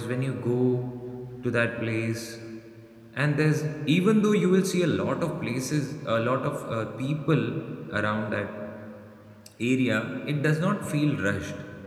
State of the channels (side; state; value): both; identical; correlation 1.00